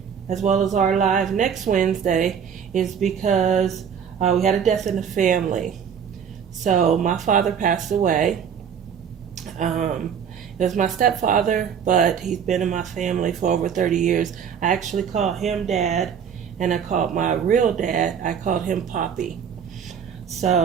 as well as our live next Wednesday, is because we had a death in the family. So my father passed away. It was my stepfather, but he's been in my family for over 30 years. I actually called him Dad, and I called my real dad, I called him Poppy.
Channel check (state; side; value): quieter; left; 7.6 dB